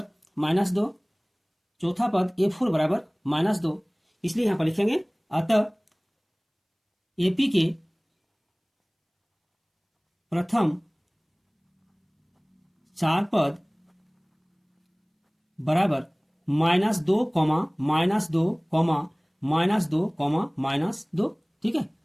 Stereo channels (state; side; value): identical; both; correlation 1.00